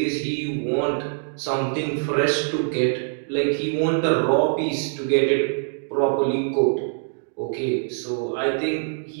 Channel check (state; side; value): silent; left; digital silence